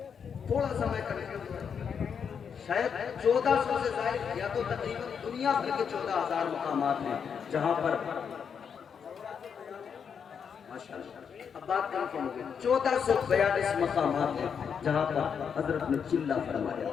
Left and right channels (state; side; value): quieter; right; 7.0 dB